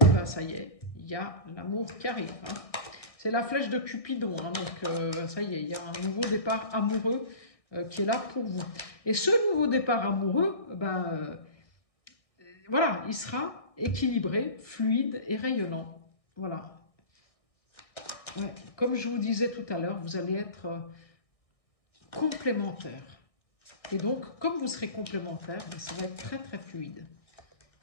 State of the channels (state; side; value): late; right; 1.6 ms